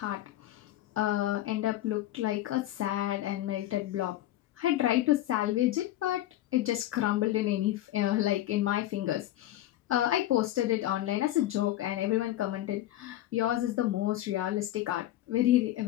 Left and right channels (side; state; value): right; quieter; 14.2 dB